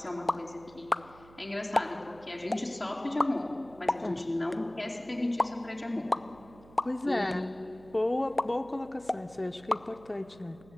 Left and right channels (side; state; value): right; noise; hum, 22 dB below the sound